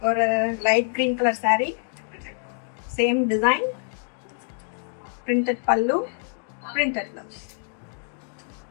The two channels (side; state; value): right; silent; digital silence